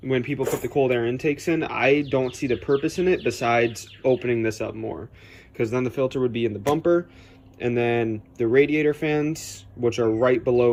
people put the cold air intakes in, I don't see the purpose in it besides opening this up more, because then the filter would be in the bumper, and then the radiator fans, which are right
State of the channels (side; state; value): both; identical; correlation 1.00